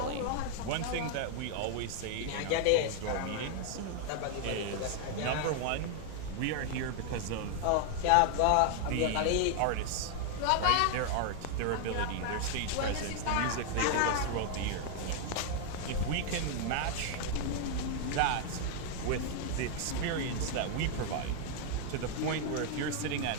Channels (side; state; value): both; different; correlation 0.00